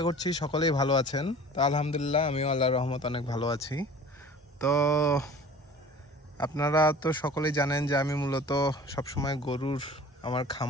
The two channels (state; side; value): normal; both; correlation 0.44